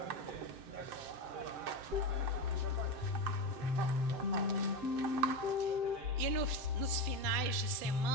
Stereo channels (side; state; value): left; late; 7.8 ms